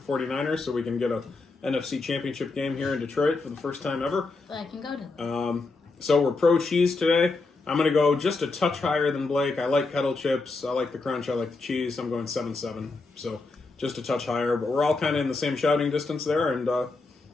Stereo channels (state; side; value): quieter; right; 3.7 dB